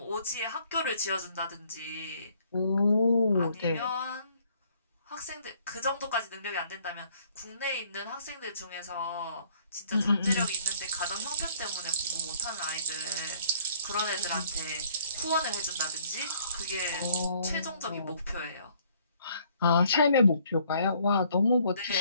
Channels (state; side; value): inverted; both; correlation -0.62